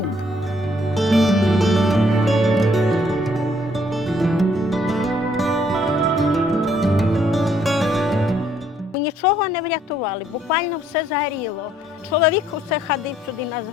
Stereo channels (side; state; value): both; normal; correlation 0.67